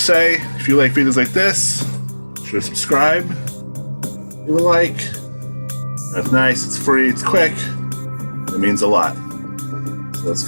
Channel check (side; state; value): both; inverted; correlation -1.00